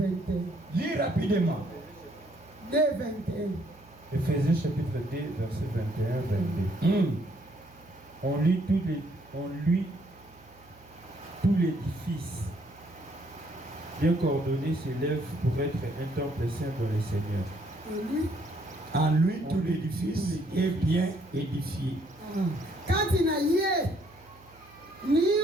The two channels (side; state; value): right; noise; hum, 26 dB below the sound